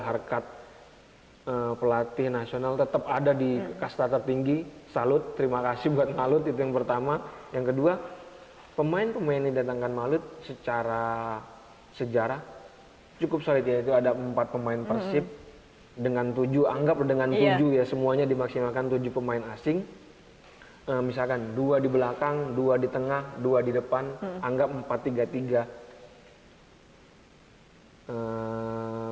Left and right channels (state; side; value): identical; both; correlation 1.00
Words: harkat pelatih nasional tetap ada di kasta tertinggi. Salut, terima kasih buat Maluku, itu yang pertama. Yang kedua, pemain-pemain yang didatangkan Maluku secara sejarah cukup solid ya. Itu ada 4 pemain Persib dengan 7, anggap dengan 7 ya, semuanya dimaksimalkan 7 pemain asing. Misalkan 2 di belakang, 2 di tengah, 2 di depan, anggap 4-3-3.